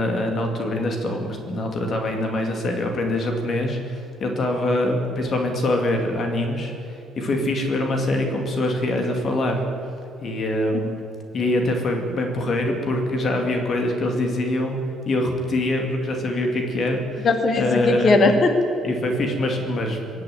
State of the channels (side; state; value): both; normal; correlation 0.71